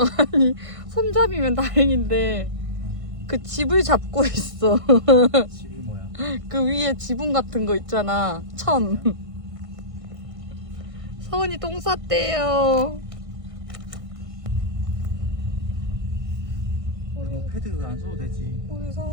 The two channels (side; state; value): left; late; 1.5 ms